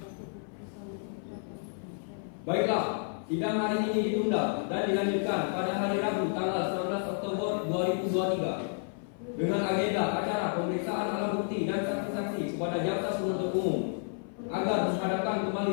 Baiklah, sidang hari ini ditunda dan dilanjutkan pada hari Rabu tanggal 19 Oktober 2023 dengan agenda acara pemeriksaan alat bukti dan saksi-saksi kepada jaksa penuntut umum agar menghadapkan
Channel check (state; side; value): silent; right; 55 dB below the other